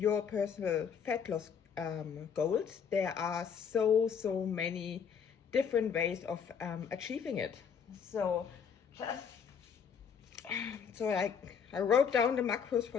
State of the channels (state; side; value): quieter; right; 7.0 dB